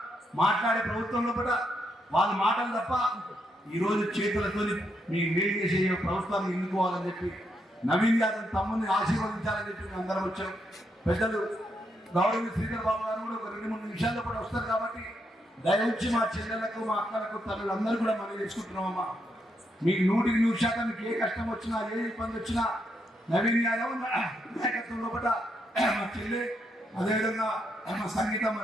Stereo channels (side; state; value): both; normal; correlation 0.79